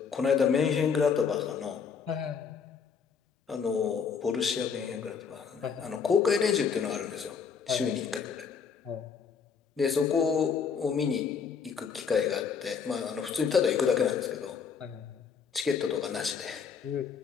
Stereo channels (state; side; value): quieter; right; 6.3 dB